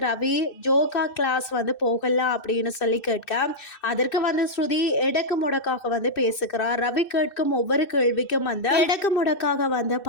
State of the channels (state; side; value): late; right; 2.6 ms